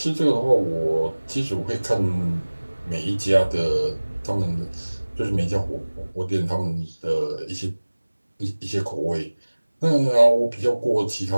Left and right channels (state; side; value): inverted; both; correlation -1.00